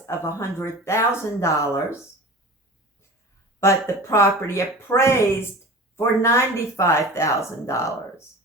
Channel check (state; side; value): normal; both; correlation 0.36